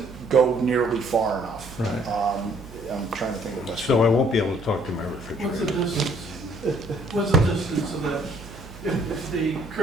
go nearly far enough. Right. I'm trying to think of the best. So I won't be able to talk to my What's the refrigerator. distance? What's the distance of that? If the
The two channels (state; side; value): noise; right; hum, 17 dB below the sound